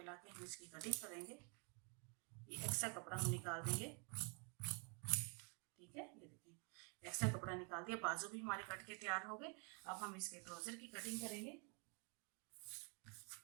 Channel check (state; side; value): quieter; left; 35.9 dB